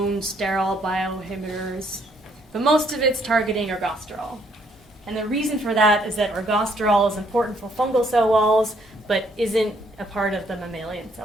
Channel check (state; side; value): normal; both; correlation 0.68